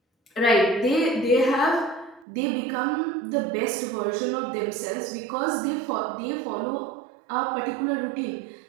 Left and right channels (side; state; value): left; drops out; at 2.2 s